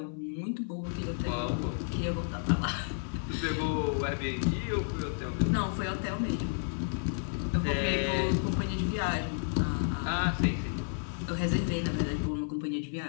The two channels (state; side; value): silent; right; 57 dB below the other